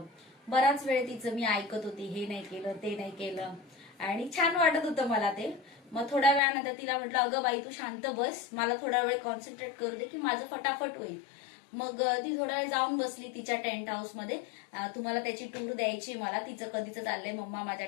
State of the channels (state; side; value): drops out; right; at 6.4 s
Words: बराच वेळ तिचं मी ऐकत होती, हे नाही केलं ते नाही केलं, आणि छान वाटत होतं मला ते. मग थोड्या वेळानंतर तिला म्हटलं अगं बाई तू शांत बस, मला थोडा वेळ कॉन्सन्ट्रेट करू दे की माझं फटाफट होईल. मग ती थोडा वेळ जाऊन बसली तिच्या टेंट हाऊस मध्ये. तुम्हाला त्याची टूर द्यायची मला, तिचं कधीच चाललंय मम्मा माझ्या